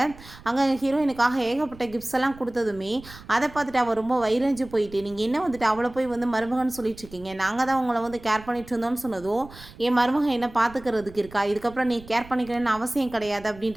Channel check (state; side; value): noise; right; rumble, 19 dB below the sound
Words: அங்கே ஹீரோயினுக்காக ஏகப்பட்ட கிஃப்ட்ஸ் எல்லாம் கொடுத்ததுமே அதை பார்த்துட்டு அவள் ரொம்ப வைரஞ்சு போயிட்டு நீங்கள் என்ன வந்துட்டு அவளை போய் வந்து மருமகன்னு சொல்லிட்டு இருக்கீங்க, நாங்கள் தான் உங்களை வந்து கேர் பண்ணிட்டு இருந்தோம்னு சொன்னதும் என் மருமகன் என்ன பார்த்துக்கிறதுக்கு இருக்கா, இதுக்கப்புறம் நீ கேர் பண்ணிக்கணும்னு அவசியம் கிடையாது